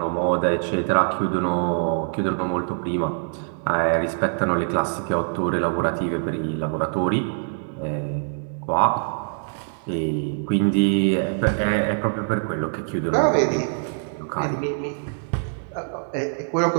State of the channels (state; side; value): silent; left; 63 dB below the other